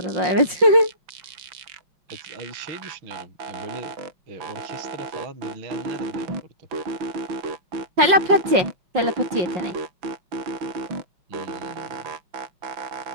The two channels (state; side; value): late; left; 5.6 ms